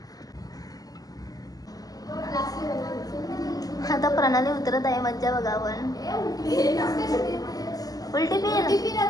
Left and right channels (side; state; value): right; late; 0.18 ms